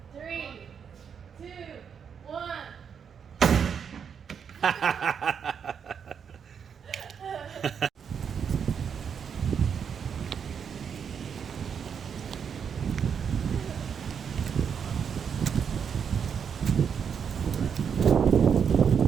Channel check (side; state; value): left; quieter; 7.2 dB